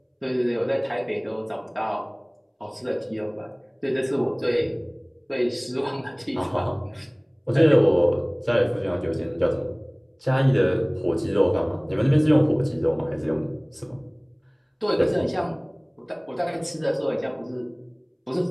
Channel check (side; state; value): both; identical; correlation 1.00